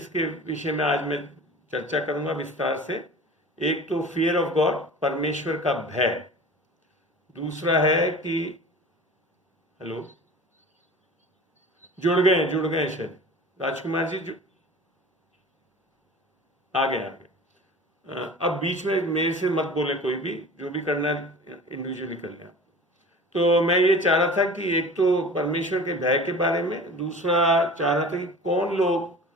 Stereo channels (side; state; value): both; normal; correlation 0.39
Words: विषय में आज मैं चर्चा करूंगा विस्तार से। एक तो फियर ऑफ गॉड, परमेश्वर का भय। दूसरा है कि हेलो, जुड़ गए शायद राजकुमार जी, आ गए। अब बीच में मेरे से मत बोले, कोई भी जो भी करना है इंडिविजुअली कर लें। तो मैं ये चाह रहा था कि एक तो परमेश्वर के भय के बारे में, दूसरा चाह रहा था कि कौन लोग